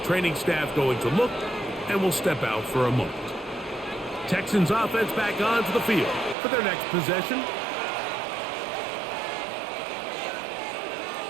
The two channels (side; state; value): left; drops out; at 6.4 s